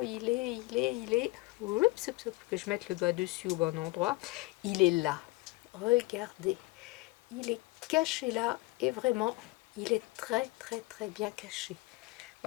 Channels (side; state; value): right; quieter; 22.3 dB